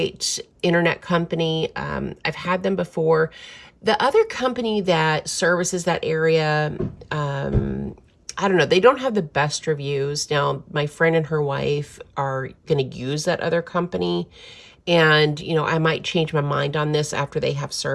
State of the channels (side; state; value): both; identical; correlation 1.00